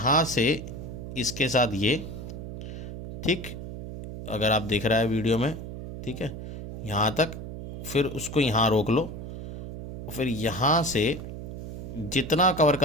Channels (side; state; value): right; noise; hum, 9 dB below the sound